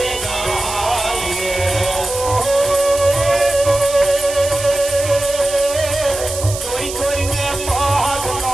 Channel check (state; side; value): noise; right; hiss, 9 dB below the sound